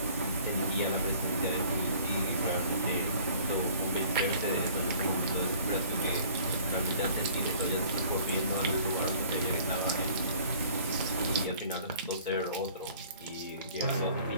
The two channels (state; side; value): inverted; both; correlation -0.52